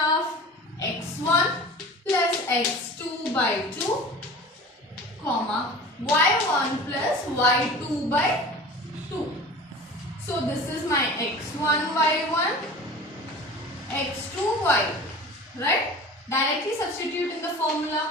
x1 plus x2 by 2, comma, y1 plus y2 by 2. So this is my x1 y1, x2 y, right? Directly substitute in the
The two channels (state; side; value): normal; both; correlation 0.39